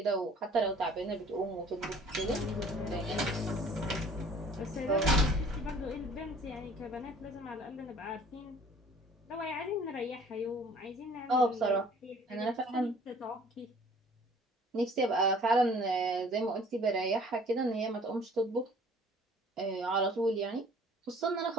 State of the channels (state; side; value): normal; both; correlation 0.52